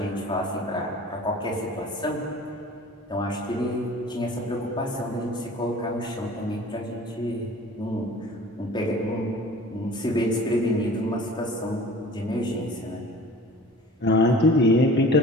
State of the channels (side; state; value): both; normal; correlation 0.45